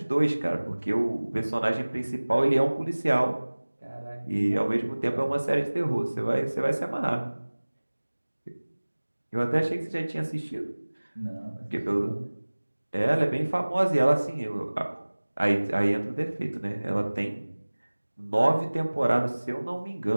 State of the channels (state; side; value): inverted; both; correlation -1.00